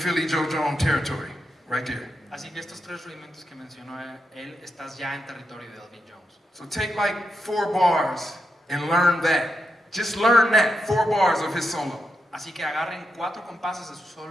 Joe Jones territory right there. Así que estos tres rudimentos que mencionó él, estás ya en territorio de Elvin Jones. So take like 4 bars and learn that. Just learn that, 4 bars of his solo, Así que agarren 4 compases de su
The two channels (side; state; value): both; normal; correlation 0.85